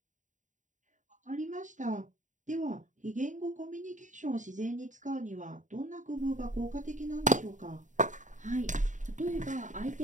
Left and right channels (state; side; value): late; left; 0.36 ms